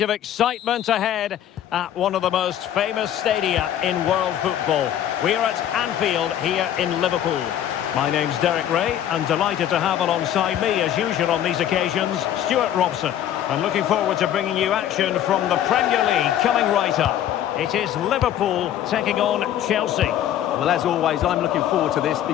excitement ahead at one of the most famous stadia in world football. We are at Anfield here in Liverpool. My name's Derek Ray, and delighted to have alongside me, as usual on these occasions, Stuart Robson. And looking forward to bringing you action from the Premier League coming right up. It is Liverpool taking on Chelsea. Well, as always, I'm looking forward to this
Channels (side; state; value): right; quieter; 11.1 dB